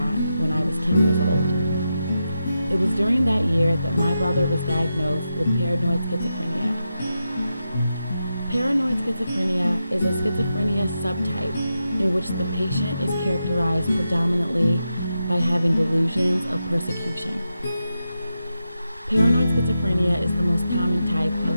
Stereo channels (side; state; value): both; inverted; correlation -0.88